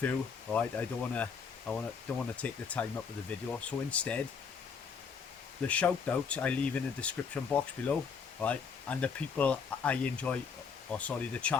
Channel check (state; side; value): quieter; right; 6.0 dB